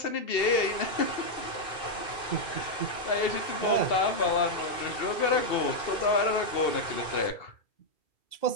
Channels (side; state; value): right; late; 2.6 ms